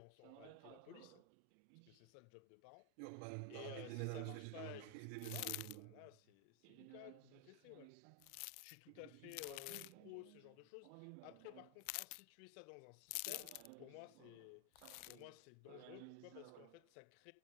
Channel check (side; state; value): both; different; correlation 0.00